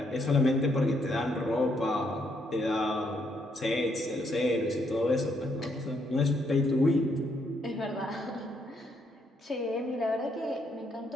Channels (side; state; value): both; normal; correlation 0.74